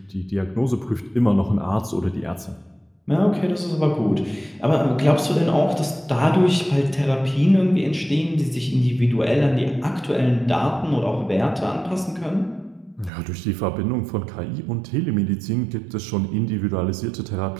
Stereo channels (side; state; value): left; drops out; at 13.1 s